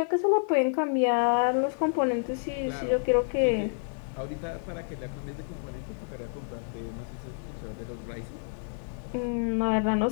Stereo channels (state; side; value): silent; right; digital silence